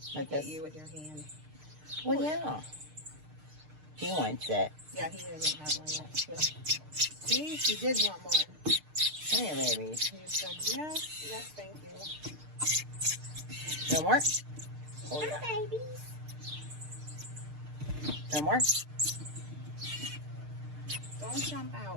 Look at you with your hand. Well, yeah. He wants it. Yeah, he doesn't have one yet. Yeah. See? He did want more. Hey, babies. He said, yes, yes, thank you. No more? Oh, yeah. Babies. No more? Don't jump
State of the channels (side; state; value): left; late; 6.6 ms